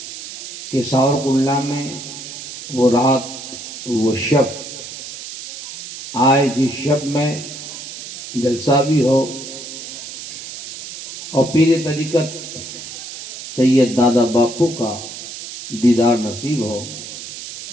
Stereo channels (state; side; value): noise; right; hiss, 11 dB below the sound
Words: کہ ساورکنڈلا میں وہ رات وہ شب آئے جس شب میں جلسہ بھی ہو اور پیر طریقت سید دادا باپو کا دیدار نصیب ہو.